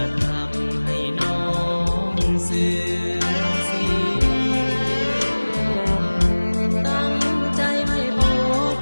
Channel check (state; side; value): inverted; both; correlation -1.00